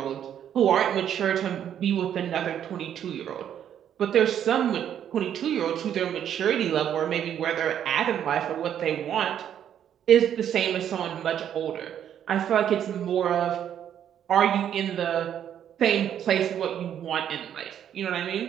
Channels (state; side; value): quieter; left; 9.7 dB